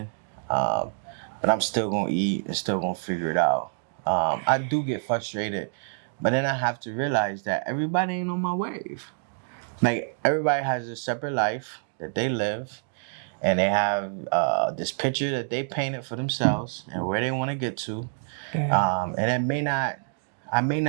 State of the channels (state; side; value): silent; left; digital silence